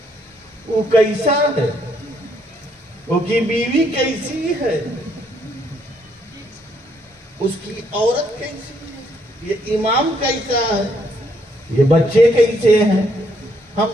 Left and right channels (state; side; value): normal; both; correlation 0.71